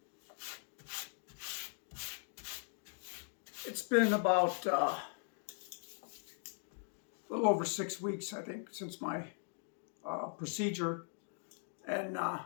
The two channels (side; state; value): right; silent; 51 dB below the other